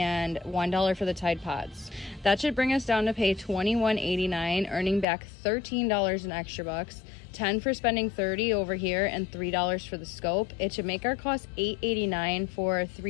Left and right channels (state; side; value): drops out; right; at 5.1 s